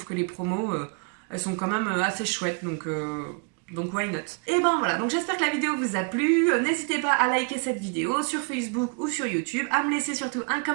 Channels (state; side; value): quieter; left; 35.9 dB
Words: que les promos, elles sont quand même assez chouettes. Donc why not? Et ben voilà, donc j'espère que la vidéo vous a plu. N'hésitez pas à liker cette vidéo sur Facebook ou sur YouTube. À me laisser surtout un